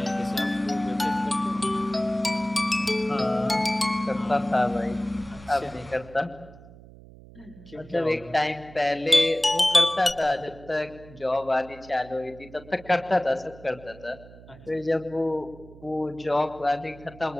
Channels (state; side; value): noise; right; hum, 20 dB below the sound